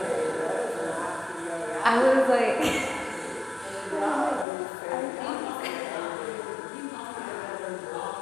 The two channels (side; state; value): right; drops out; at 4.5 s